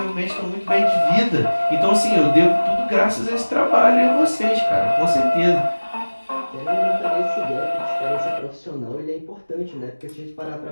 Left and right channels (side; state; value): both; inverted; correlation -1.00